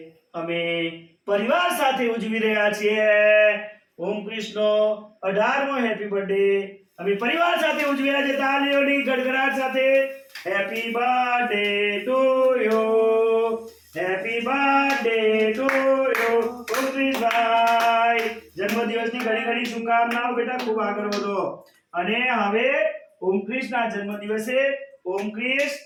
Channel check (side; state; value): both; identical; correlation 1.00